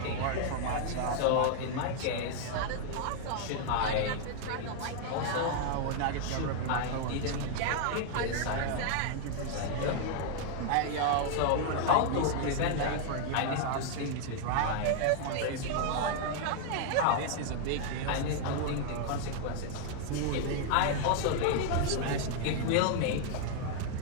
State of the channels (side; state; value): both; different; correlation 0.00